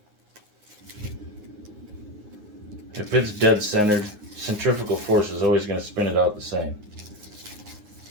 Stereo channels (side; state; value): left; late; 9.6 ms